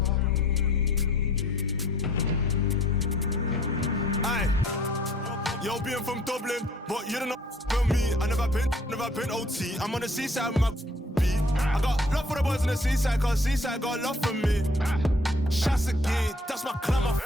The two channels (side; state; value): both; normal; correlation 0.57